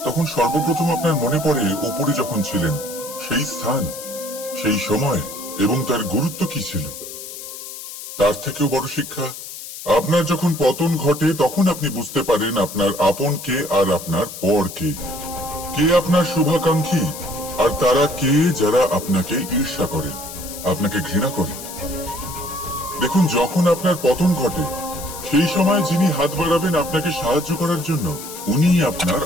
তখন সর্বপ্রথম আপনার মনে পড়ে উপরে যখন ছিলেন সেই স্থান, সেই সময় এবং তার গুরুত্ব কি ছিল। তার থেকেও বড় শিক্ষা, আপনার যখন পতন ঘটে তখন আপনি বুঝতে পারেন আপনার আপন কে আর আপনার পর কে। কে আপনার শুভাকাঙ্ক্ষী আর তারা কে যারা আপনাকে ঈর্ষা করেন, আপনাকে ঘৃণা করেন। দেখুন, যখন আপনার পতন ঘটে সেই সময় যিনি হাত বাড়াবেন আপনাকে সাহায্য করার জন্য, উনিই আপনার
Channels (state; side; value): noise; left; hiss, 11 dB below the sound